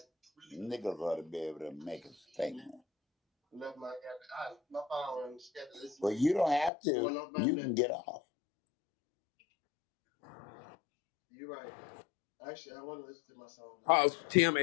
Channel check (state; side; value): drops out; right; at 6.7 s